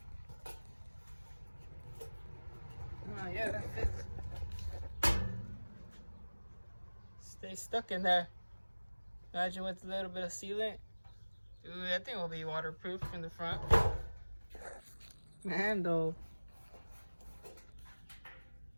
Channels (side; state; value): both; inverted; correlation -1.00